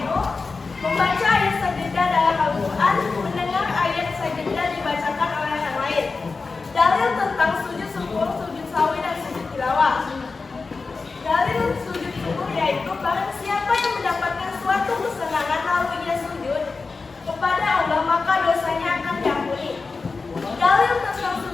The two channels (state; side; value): quieter; right; 4.2 dB